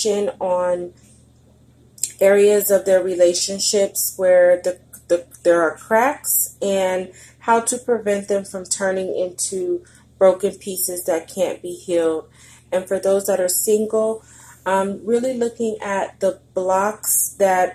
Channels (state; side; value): identical; both; correlation 1.00